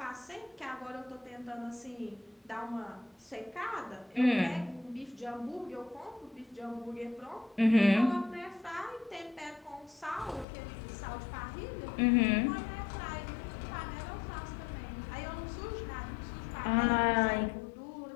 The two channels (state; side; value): drops out; right; at 10.5 s